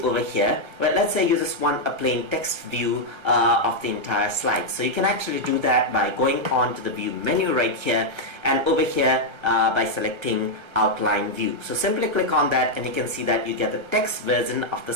over here, but let's say you just want a plain text view of the entire slide. So you can actually do that by going on to the view menu right here, and over here by selecting outline view. So simply click on that and you can see that you get the text version of the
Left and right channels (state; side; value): late; left; 1.3 ms